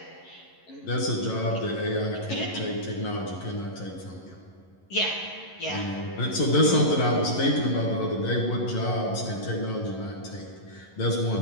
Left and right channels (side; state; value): right; late; 11 ms